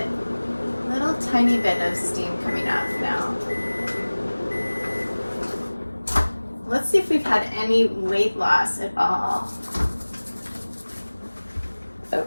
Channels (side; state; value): both; inverted; correlation -1.00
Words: of steam coming off now. Let's see if we've had any weight loss at all. Oh.